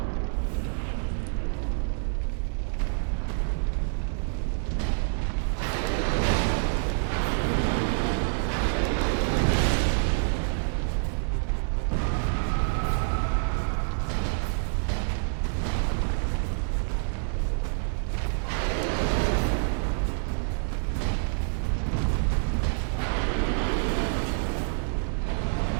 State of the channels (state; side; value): silent; left; digital silence